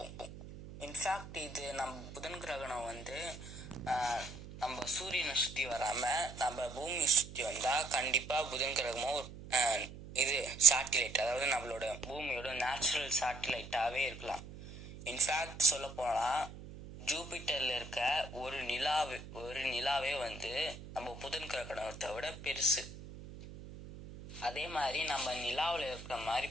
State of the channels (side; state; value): right; noise; hum, 14 dB below the sound